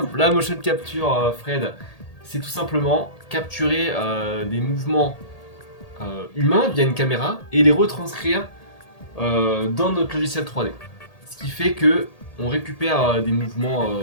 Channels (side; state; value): right; late; 1.8 ms